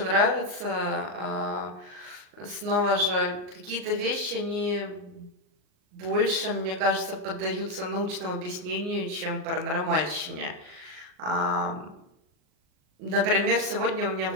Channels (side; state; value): left; late; 38 ms